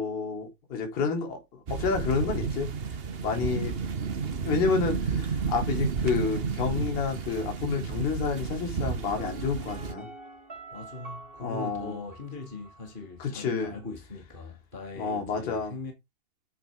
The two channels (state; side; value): late; left; 2.8 ms